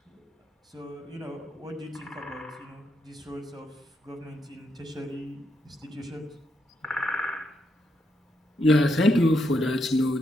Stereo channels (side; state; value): both; normal; correlation 0.80